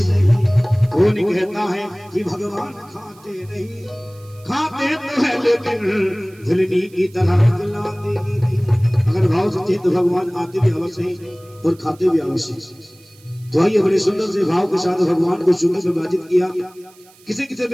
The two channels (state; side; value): noise; right; hiss, 28 dB below the sound